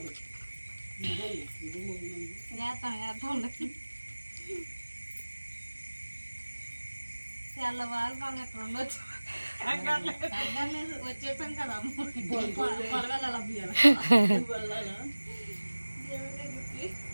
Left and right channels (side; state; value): both; inverted; correlation -1.00